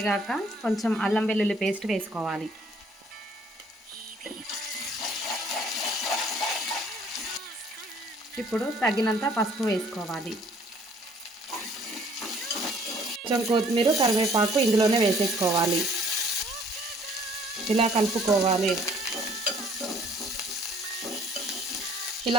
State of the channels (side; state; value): both; normal; correlation 0.59